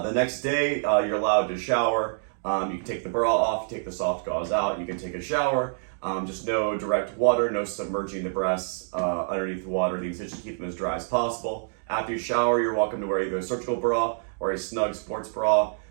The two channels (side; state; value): left; silent; digital silence